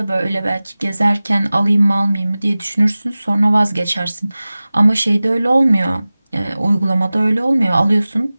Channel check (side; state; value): both; inverted; correlation -0.98